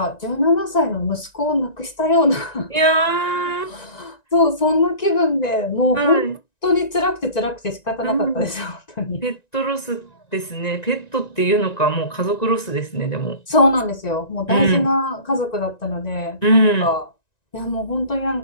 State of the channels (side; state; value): right; late; 1.9 ms